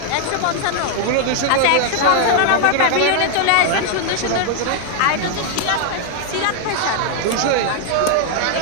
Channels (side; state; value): both; different; correlation 0.00